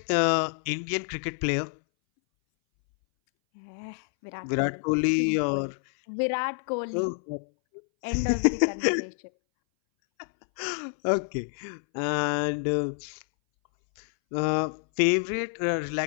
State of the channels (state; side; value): silent; right; 60 dB below the other